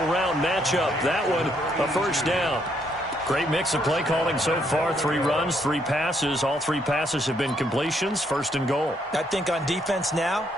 round matchup. That one, a first down. Great mix of play calling so far. 3 runs, 3 passes. All 3 passes have been completions. 1st and goal. I think on defense now,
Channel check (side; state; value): both; normal; correlation 0.72